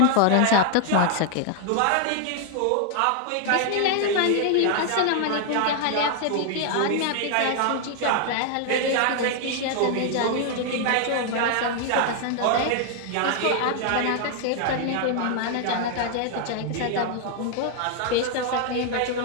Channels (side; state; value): both; different; correlation 0.00